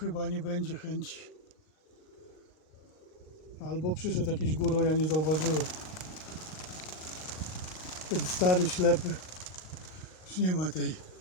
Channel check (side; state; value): right; late; 38 ms